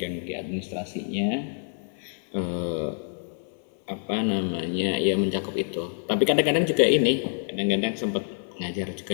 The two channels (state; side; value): silent; right; 60 dB below the other